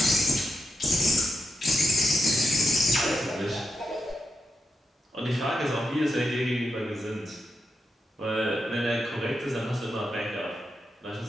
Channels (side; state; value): both; normal; correlation 0.85